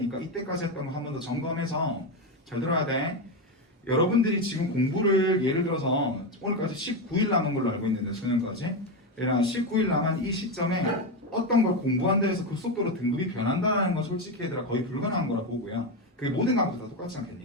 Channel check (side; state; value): both; normal; correlation 0.12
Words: 이때까지 했던 거 한 번 더 점검해서 잘 들어야 돼. 여러분들이 지금 공부를 예를 들어서 오늘까지 19일 남은 걸로 알고 있는데 수능까지 19일 남은 이 시점에 어떤 걸 공부한다 해서 그 속도로 등급이 변한다는 건 솔직히 얘들아 거의 불가능한 거라 보고요. 그게 모든 과목도 다 똑같지